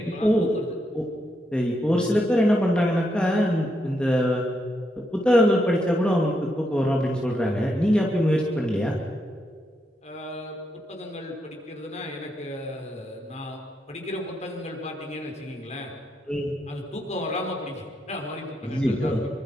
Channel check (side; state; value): both; normal; correlation 0.81